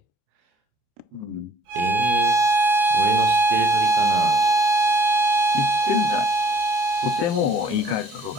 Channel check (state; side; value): late; left; 29 ms